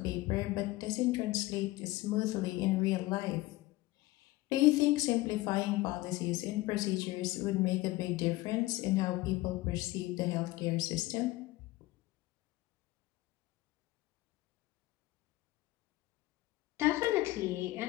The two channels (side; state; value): right; quieter; 18.9 dB